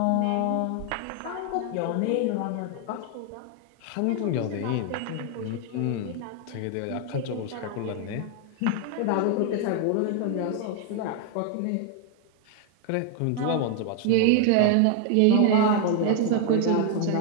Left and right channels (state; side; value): different; both; correlation 0.00